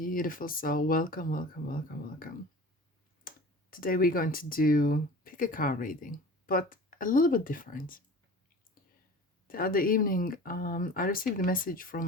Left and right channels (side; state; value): both; normal; correlation 0.40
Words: soul. Welcome, welcome, welcome, welcome. Today we're going to do pick a card reading, but a little bit different. The other evening, I received a message from